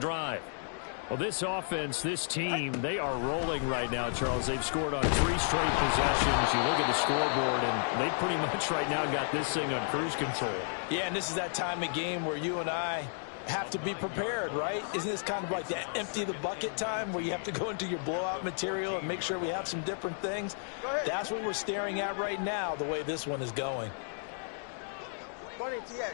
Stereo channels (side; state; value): right; silent; digital silence